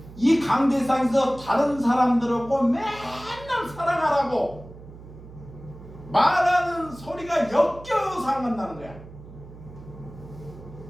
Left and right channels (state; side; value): noise; right; hum, 17 dB below the sound